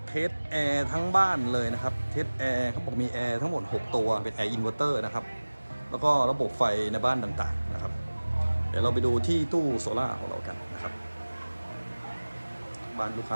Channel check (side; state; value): both; inverted; correlation -1.00